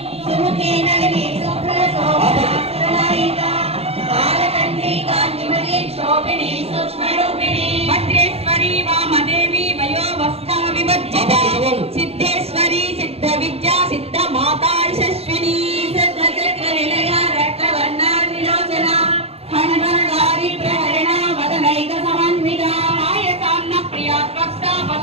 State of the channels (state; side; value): late; left; 0.29 ms